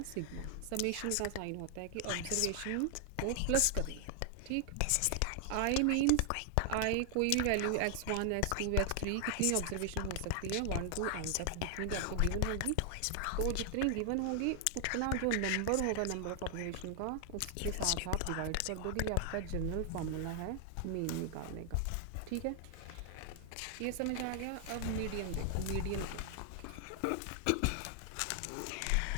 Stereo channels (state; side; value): different; both; correlation 0.00